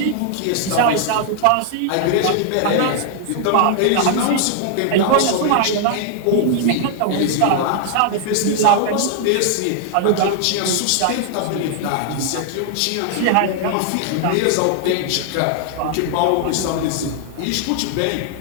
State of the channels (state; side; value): different; both; correlation 0.00